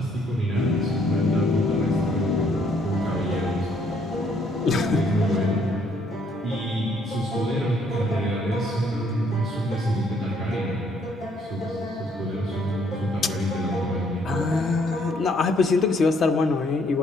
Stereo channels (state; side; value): normal; both; correlation 0.67